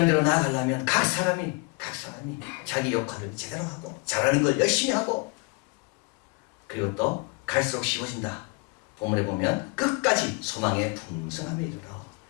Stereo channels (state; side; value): quieter; right; 28.2 dB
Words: 대로 나아가려면 각 사람이 자기 역할을 제대로 하고 잘하는 걸 열심히 하고 그리고 또 갈수록 쉬워진다. 본문에 보면 끝까지 소망의 풍성함에 이르러.